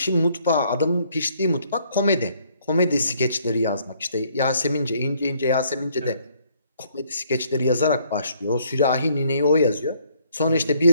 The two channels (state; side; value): inverted; both; correlation -0.65